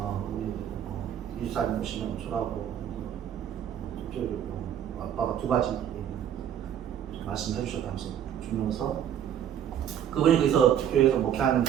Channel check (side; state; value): left; quieter; 9.7 dB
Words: 우리 이주사님 오시면 주라고 쪽지를 아빠가 2가지 말씀해 주셨다면서 주면서 그분이 거기서 교회에서 목회하는